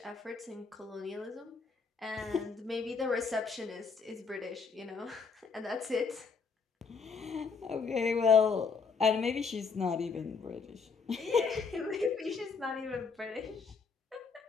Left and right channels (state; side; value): quieter; right; 5.2 dB